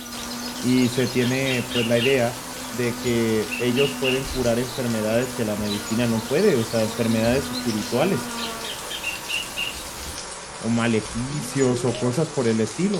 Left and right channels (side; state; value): both; identical; correlation 1.00